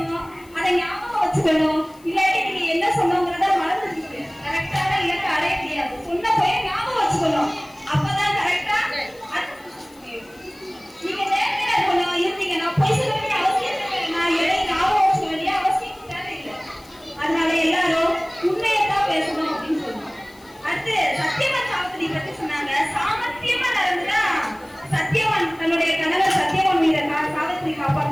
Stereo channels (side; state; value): left; noise; hiss, 27 dB below the sound